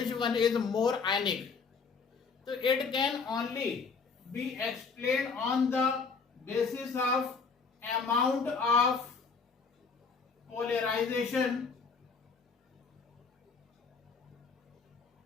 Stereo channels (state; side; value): quieter; right; 5.1 dB